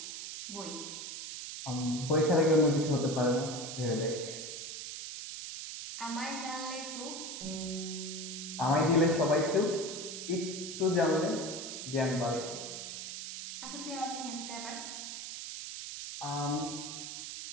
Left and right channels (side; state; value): right; noise; hiss, 7 dB below the sound